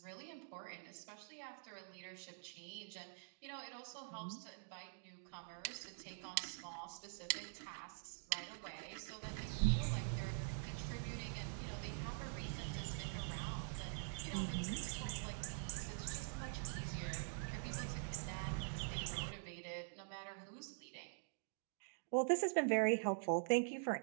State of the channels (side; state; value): left; silent; digital silence